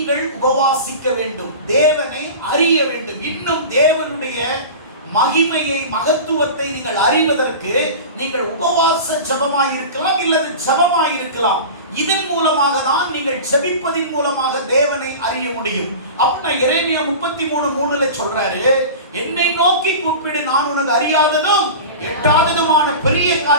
உபவாசிக்க வேண்டும். தேவனை அறிய வேண்டும். இன்னும் தேவனுடைய மகிமையை, மகத்துவத்தை நீங்கள் அறிவதற்கு நீங்கள் உபவாச ஜெபமாய் இருக்கலாம், இல்லது ஜெபமாய் இருக்கலாம். இதன் மூலமாக தான் நீங்கள் ஜெபிப்பதின் மூலமாக தேவனை அறிய முடியும். அப்படின்னா எரேமியா 33:3 சொல்றாரு, என்னை நோக்கி கூப்பிடு, நான் உனக்கு அறியாததும் எட்டாததுமான பெரிய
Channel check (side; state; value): both; inverted; correlation -0.32